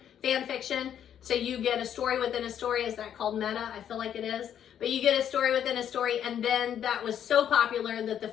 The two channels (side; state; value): right; quieter; 9.5 dB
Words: fan fiction. So you get a story within a story. Is that called meta? I feel like it is. But you get a story within a story. And then that was so popular that the